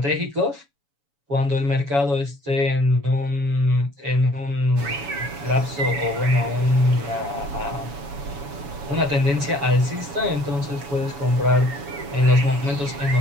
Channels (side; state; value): left; late; 7.1 ms